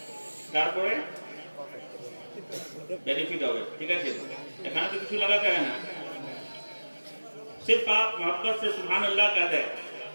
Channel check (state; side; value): inverted; both; correlation -1.00